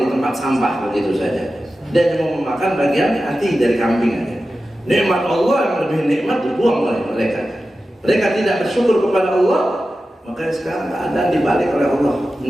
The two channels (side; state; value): both; normal; correlation 0.93